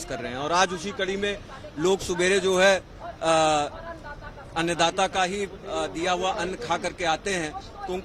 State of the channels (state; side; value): identical; both; correlation 1.00